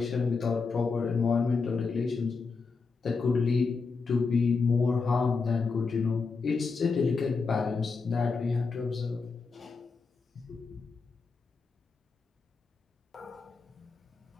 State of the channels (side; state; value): right; quieter; 4.6 dB